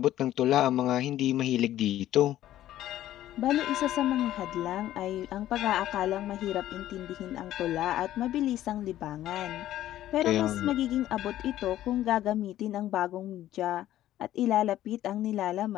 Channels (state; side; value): quieter; right; 13.3 dB